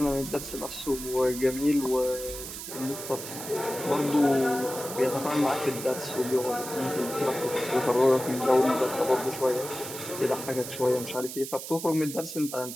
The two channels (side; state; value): right; noise; hiss, 9 dB below the sound